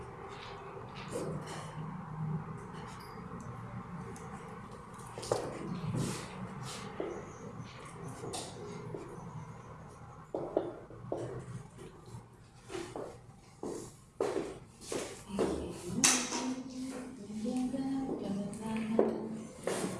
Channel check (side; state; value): both; identical; correlation 1.00